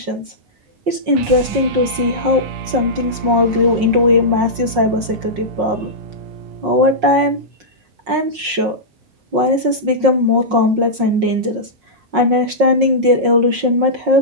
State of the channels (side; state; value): left; late; 5.5 ms